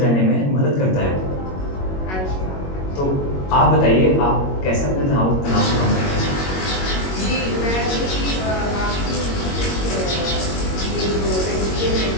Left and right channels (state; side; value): late; right; 21 ms